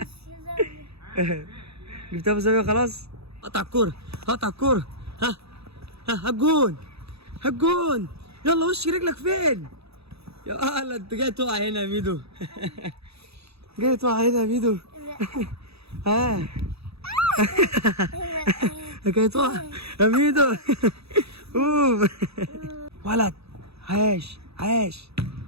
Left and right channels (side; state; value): left; late; 0.78 ms